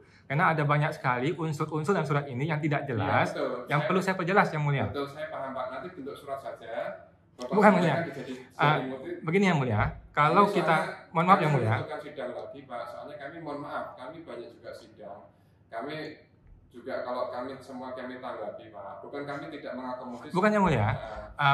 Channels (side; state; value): both; identical; correlation 1.00